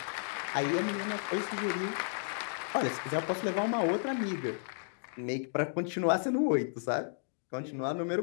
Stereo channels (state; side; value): silent; right; digital silence